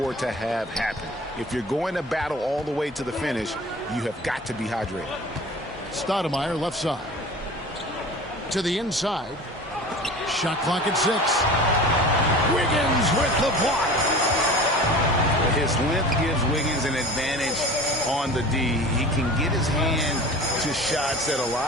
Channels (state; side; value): normal; both; correlation 0.39